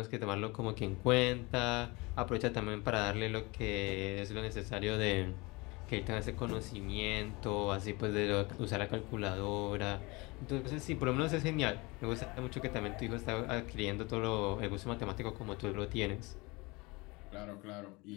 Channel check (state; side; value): quieter; right; 25.1 dB